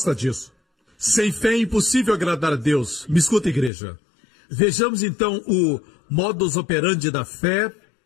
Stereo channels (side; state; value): right; drops out; at 3.7 s